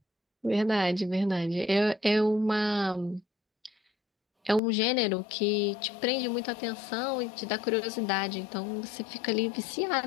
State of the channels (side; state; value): right; drops out; at 4.6 s